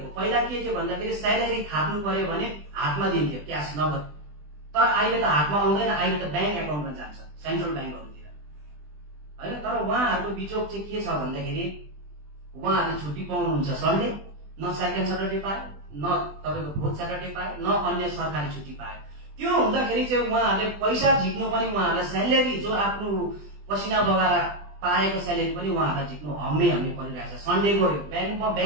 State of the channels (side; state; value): left; late; 20 ms